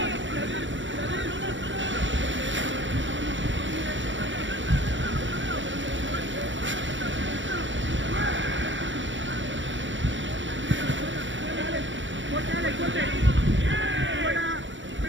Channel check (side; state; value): left; late; 0.55 ms